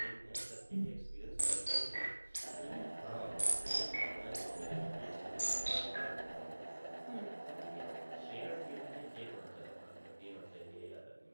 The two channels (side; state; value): both; inverted; correlation -1.00